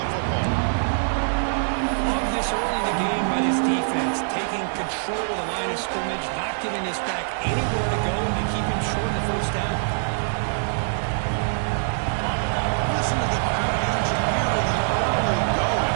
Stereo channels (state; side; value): silent; left; digital silence